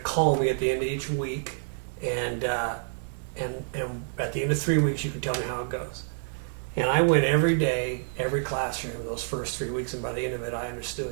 call me at the end of each week, and at the end of 3 weeks, you can tell me how it goes." And I went every day, every classroom, those first 3 weeks, and by the end of it, I understood.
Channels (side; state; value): left; silent; digital silence